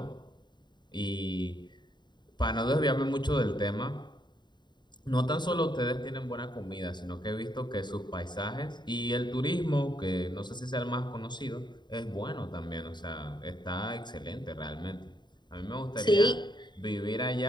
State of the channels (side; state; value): right; late; 0.22 ms